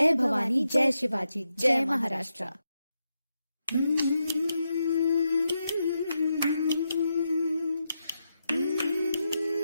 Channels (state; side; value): inverted; both; correlation -0.86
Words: भवानी, जय शिवाजी, जय महाराष्ट्र.